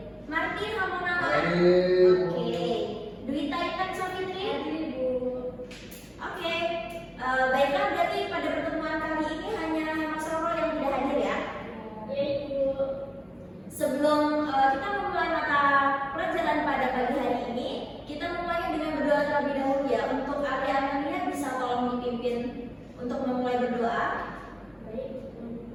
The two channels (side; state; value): both; identical; correlation 1.00